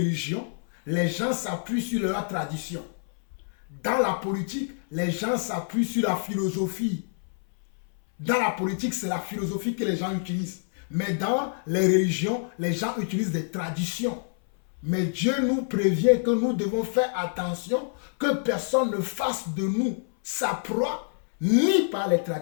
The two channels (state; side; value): silent; right; 60 dB below the other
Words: les gens s'appuient sur leur tradition. Dans la politique, les gens s'appuient sur la philosophie. Dans la politique, c'est la philosophie que les gens utilisent. Mais dans les religions, les gens utilisent des traditions. Mais Dieu nous prévient que nous devons faire attention que personne ne fasse de nous sa proie, ni par les